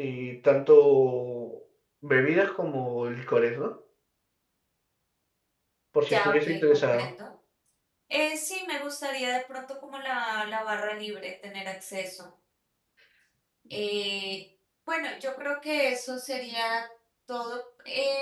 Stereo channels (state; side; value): identical; both; correlation 1.00